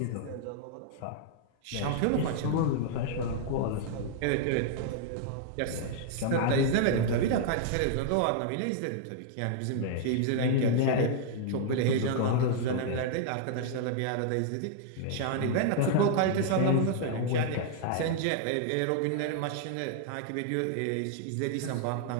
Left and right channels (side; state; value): both; different; correlation -0.01